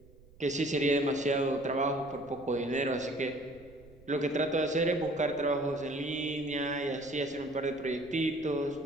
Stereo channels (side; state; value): right; noise; rumble, 24 dB below the sound